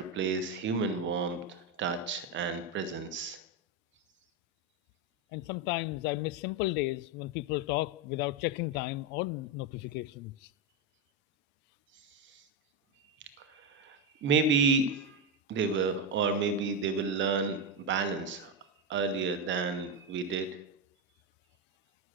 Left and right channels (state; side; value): normal; both; correlation 0.09